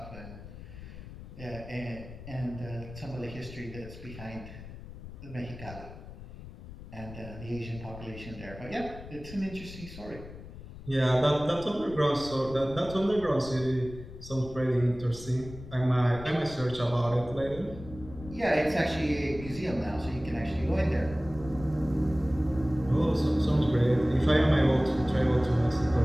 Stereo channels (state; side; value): noise; left; rumble, 14 dB below the sound